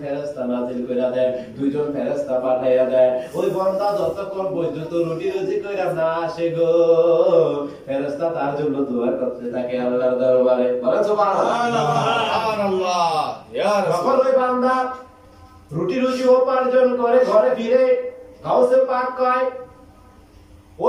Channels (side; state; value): both; identical; correlation 1.00